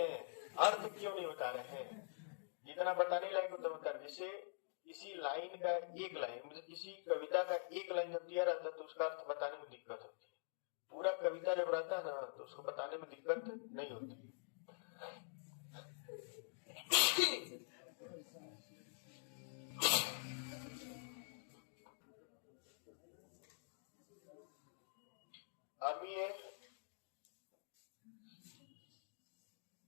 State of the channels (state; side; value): silent; right; digital silence